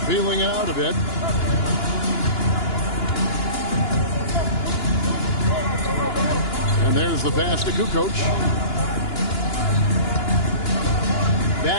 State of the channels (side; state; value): right; late; 2.9 ms